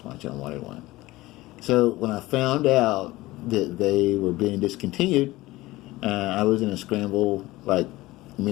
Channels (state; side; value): quieter; right; 18.6 dB